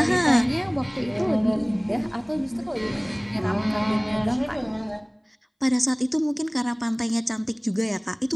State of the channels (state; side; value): identical; both; correlation 1.00